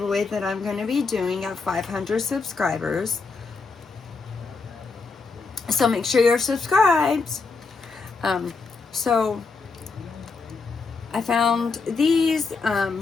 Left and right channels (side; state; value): right; quieter; 4.4 dB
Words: that I'm going to be doing at 500 subscribers. So make sure you're subscribed. So I found these